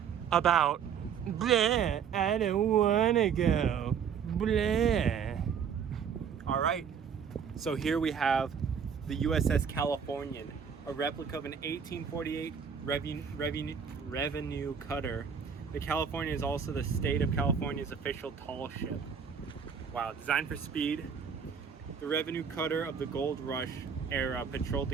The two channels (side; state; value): left; quieter; 7.2 dB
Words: about, bleh, I don't wanna go, bleh. All right, so here we have the USS Californian, a replica of an 1848 revenue cutter. The Californian is also the state of California's official tall ship. Wow, designed for speed, the revenue cutter of the gold rush era patrolled the